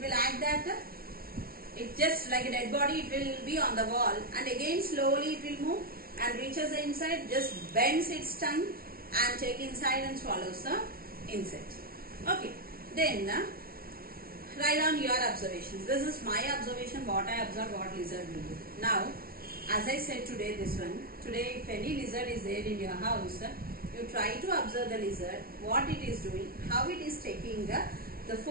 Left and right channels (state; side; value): late; left; 0.43 ms